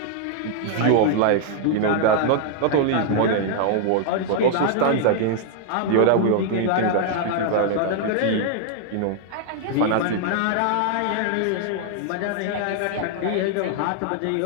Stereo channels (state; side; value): different; both; correlation -0.01